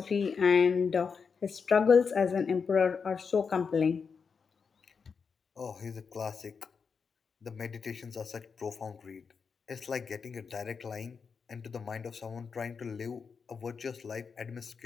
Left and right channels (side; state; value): right; quieter; 5.7 dB